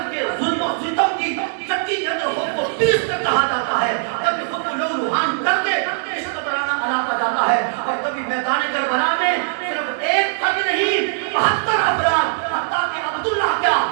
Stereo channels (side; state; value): left; silent; digital silence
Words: کے ظلم و ستم کی چکی کے اندر خود کو پیس کر کہا جاتا ہے. کبھی خود کو لو لوہان کر کے عشق کا ترانہ الاپا جاتا ہے. اور کبھی میدان کربلا میں صرف ایک فرد نہیں, 72 افراد, حتیٰ کہ عبداللہ کیا,